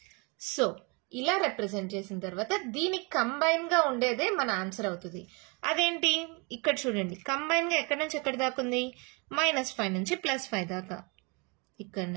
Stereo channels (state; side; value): quieter; left; 30.7 dB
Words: సో ఇలా రిప్రజెంట్ చేసిన తర్వాత దీనికి కంబైన్ గా ఉండేదే మన ఆన్సర్ అవుతుంది. అదేంటి? ఇక్కడ చూడండి, కంబైన్ గా ఎక్కడి నుంచి ఎక్కడి దాకా ఉంది? -5 నుంచి +5 దాకా, ఇక్కడ